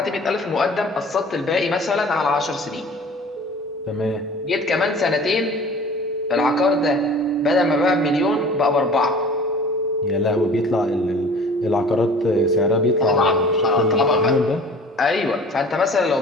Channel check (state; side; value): normal; both; correlation 0.46